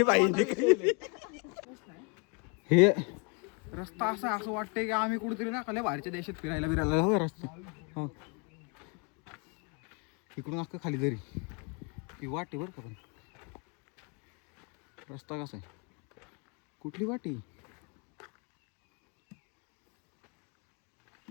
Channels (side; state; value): right; quieter; 34.0 dB